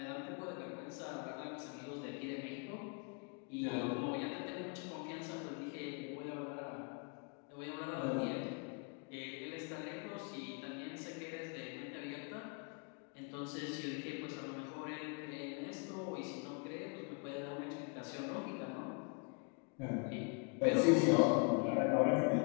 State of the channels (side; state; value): right; quieter; 35.5 dB